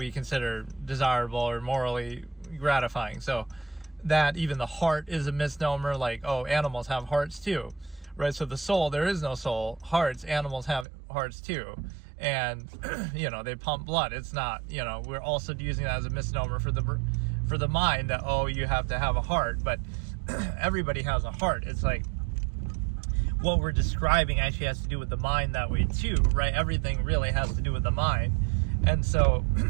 consider desirable or morally gratifying. So that even the heart is a misnomer, like, oh, animals have hearts too, right? So the soul, there is no soul. Hearts, animals have hearts too, and you know, they pump blood. It's not, you know, we're also using that as a misnomer for the mind, that, oh, you have to have a heart, but everybody has a heart. It's like what we're describing actually has to do with the mind that way too, right? Everything really has to do with the mind, and so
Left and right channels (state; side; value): drops out; left; at 10.9 s